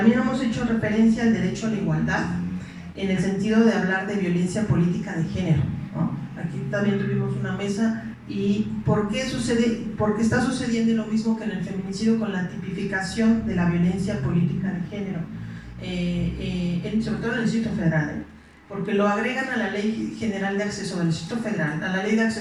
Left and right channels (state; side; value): identical; both; correlation 1.00